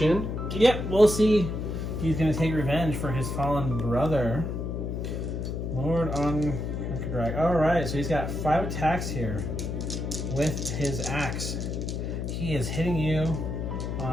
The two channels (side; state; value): left; noise; hum, 3 dB below the sound